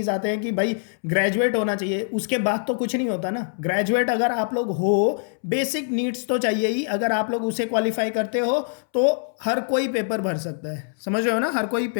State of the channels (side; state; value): right; silent; 63 dB below the other